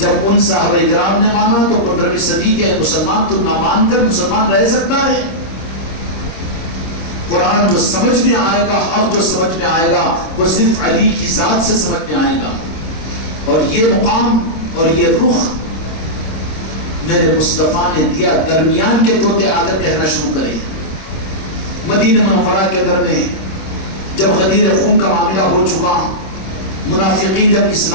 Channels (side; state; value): right; late; 26 ms